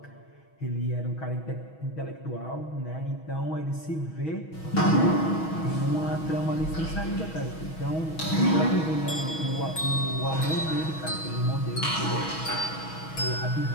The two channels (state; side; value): late; right; 6.3 ms